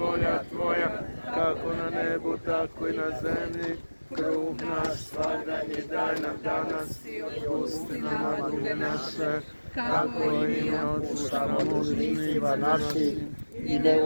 Tvoja, kako na nebu, tako i na zemlji. Kruh naš svagdanji daj nam danas i otpusti nama duge naše, kako i mi otpuštamo dužnicima našim, i ne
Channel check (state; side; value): inverted; both; correlation -1.00